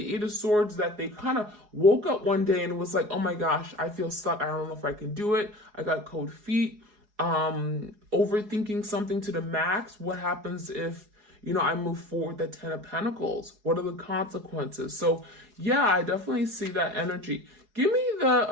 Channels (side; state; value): left; late; 4.8 ms